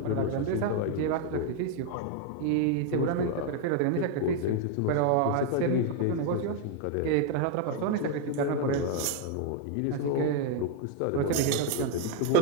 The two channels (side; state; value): both; different; correlation 0.00